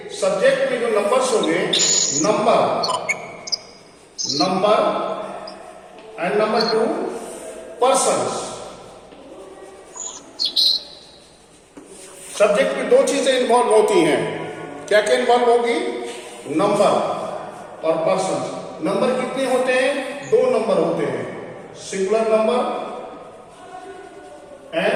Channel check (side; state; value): both; identical; correlation 1.00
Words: सब्जेक्ट में जो नंबर्स होंगे, number and number 2 persons. Subject में दो चीजें इन्वॉल्व होती हैं. क्या क्या इन्वॉल्व होगी? नंबर और पर्सन्स. नंबर कितने होते हैं? 2 नंबर होते हैं, singular number